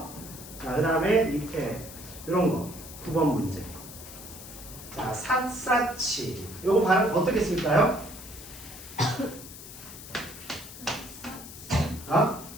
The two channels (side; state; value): left; noise; hiss, 14 dB below the sound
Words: 자, 그 다음에 밑에 이런 거 9번 문제. 자, 삿사치 요거 발음 어떻게 쓸까요? 아?